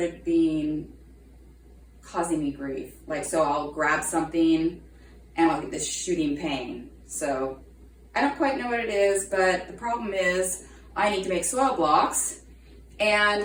causing me grief. Like, so I'll grab something and I'll get this shooting pain. So I don't quite know what it is, but the problem is I need to make soil blocks,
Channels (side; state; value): both; identical; correlation 1.00